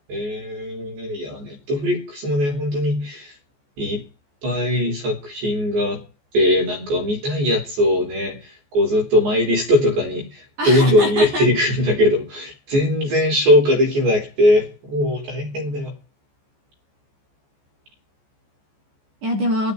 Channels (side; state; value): left; late; 14 ms